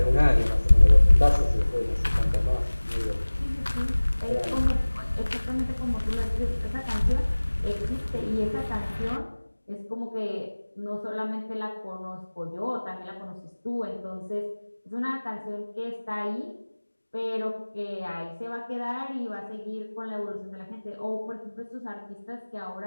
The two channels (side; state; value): both; inverted; correlation -1.00